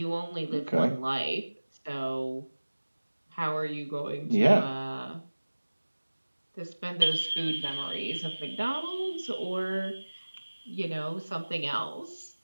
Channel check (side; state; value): both; inverted; correlation -1.00